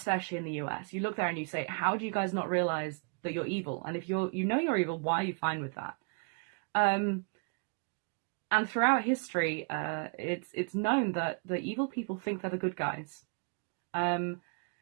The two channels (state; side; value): quieter; left; 36.8 dB